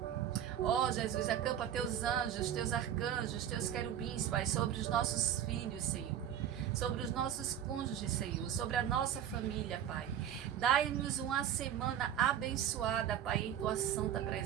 Ó Jesus, acampa teus anjos, teus arcanjos, teus querubins, Pai, sobre os nossos filhos, Senhor. Sobre os nossos cônjuges, Senhor, sobre a nossa família, Pai. Dai-nos uma semana abençoada, Pai, em tua santa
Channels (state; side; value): quieter; left; 10.0 dB